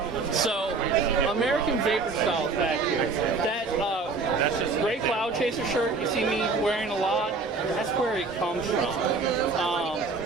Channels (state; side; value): quieter; left; 4.1 dB